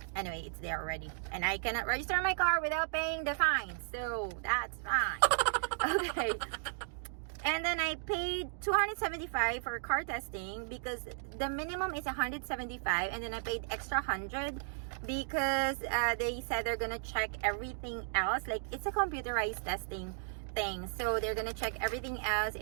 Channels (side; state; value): left; silent; digital silence